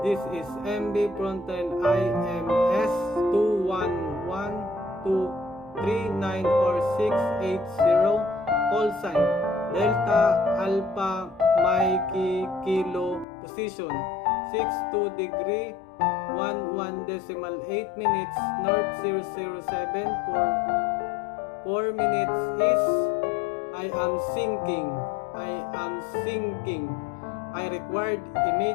This is MB Frontline IMS 211-239 or 680. Call sign Delta Alpha Mikey Kilo position 62 degree 11 decimal 8 minutes north 007 for 4 minutes is I am sinking. I required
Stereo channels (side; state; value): right; drops out; at 13.2 s